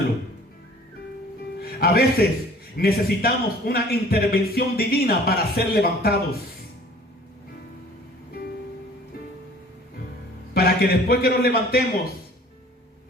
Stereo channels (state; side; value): normal; both; correlation 0.50